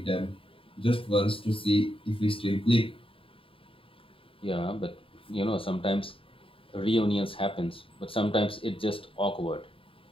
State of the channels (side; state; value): right; late; 0.26 ms